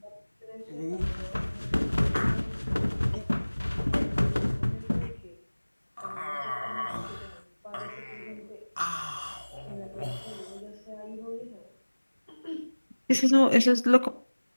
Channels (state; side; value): inverted; both; correlation -1.00